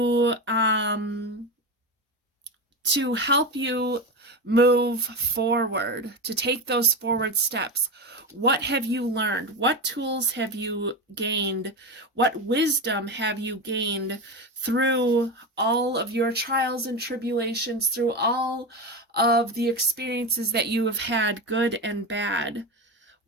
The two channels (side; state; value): both; normal; correlation 0.18